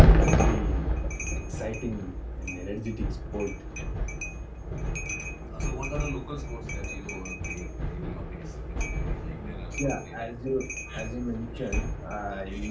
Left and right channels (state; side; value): identical; both; correlation 1.00